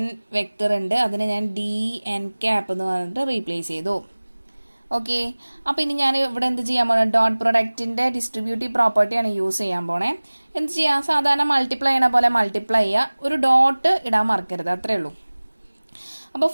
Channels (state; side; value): inverted; both; correlation -1.00